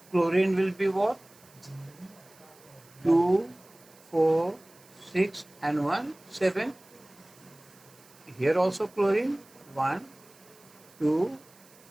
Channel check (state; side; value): noise; right; hiss, 26 dB below the sound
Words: chlorine will be what? 2, 4, 6 and 1, 7. Here also chlorine 1, 2,